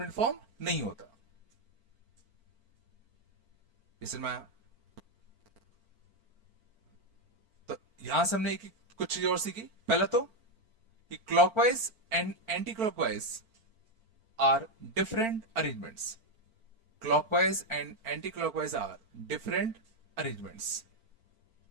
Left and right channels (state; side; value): late; left; 4.5 ms